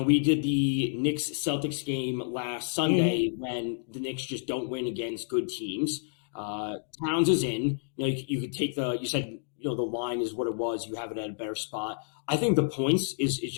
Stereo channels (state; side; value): silent; right; digital silence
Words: We did the Knicks-Celtics game last Sunday when the Knicks just don't win against good teams. Towns is in. You could take you said, the line is what it was. You have it at a better spot. I think the points is